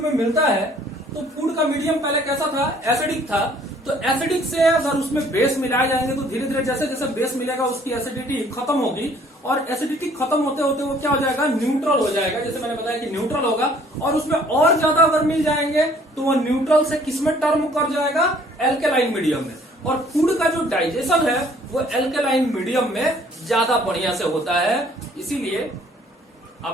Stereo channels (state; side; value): normal; both; correlation 0.58